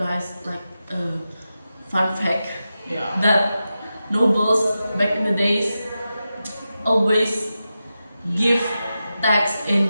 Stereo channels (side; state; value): both; inverted; correlation -0.91